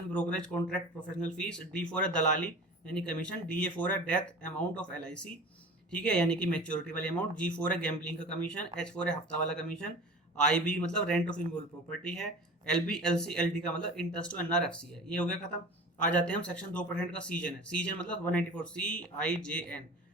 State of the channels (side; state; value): both; normal; correlation 0.38